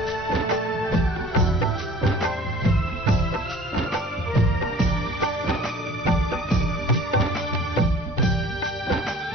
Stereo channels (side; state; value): both; normal; correlation 0.48